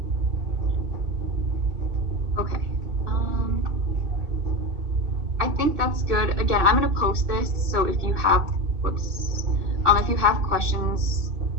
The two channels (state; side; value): late; left; 2.3 ms